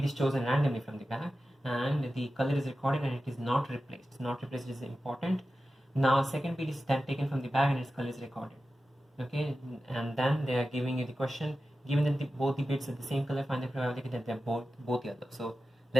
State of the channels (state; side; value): normal; both; correlation 0.93